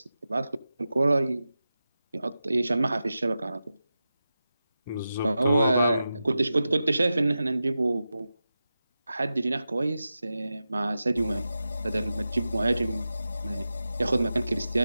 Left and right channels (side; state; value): both; inverted; correlation -0.92